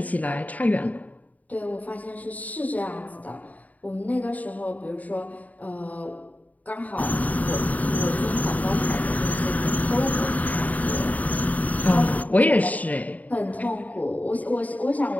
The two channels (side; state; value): right; late; 0.074 ms